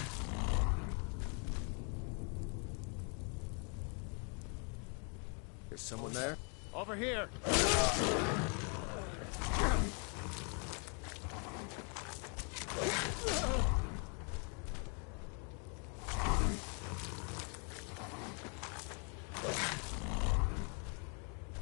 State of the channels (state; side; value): quieter; right; 38.4 dB